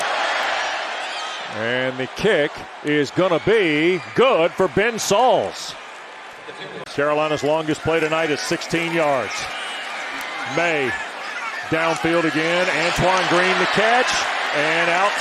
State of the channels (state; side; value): identical; both; correlation 1.00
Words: And the kick is going to be good for Ben Sauls. Carolina's longest play tonight is 16 yards. Maye downfield again. Antoine Green the catch. And out